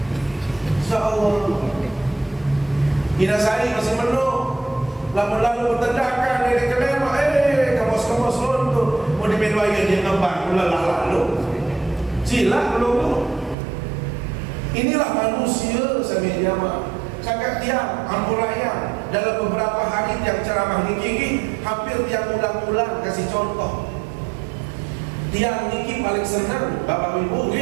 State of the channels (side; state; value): left; drops out; at 13.6 s